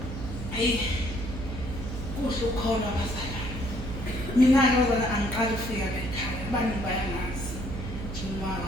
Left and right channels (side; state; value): right; noise; hum, 7 dB below the sound